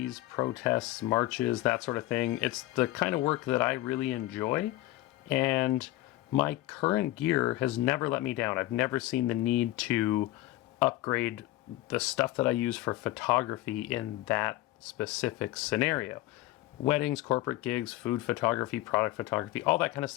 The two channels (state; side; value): quieter; right; 16.8 dB